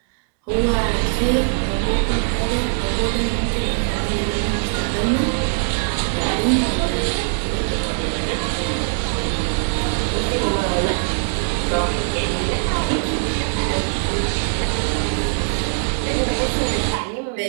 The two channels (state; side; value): silent; left; 65 dB below the other